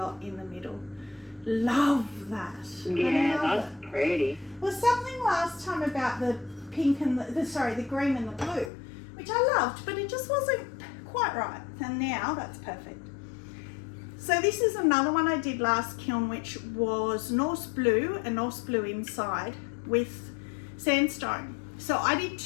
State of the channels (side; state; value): right; drops out; at 8.7 s